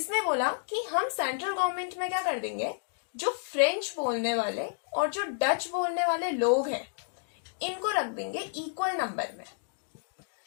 बोला कि हम सेंट्रल गवर्नमेंट में क्या कर देंगे, जो फ्रेंच बोलने वाले और जो डच बोलने वाले लोग हैं इनको रख देंगे इक्वल नंबर में।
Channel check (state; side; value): silent; right; digital silence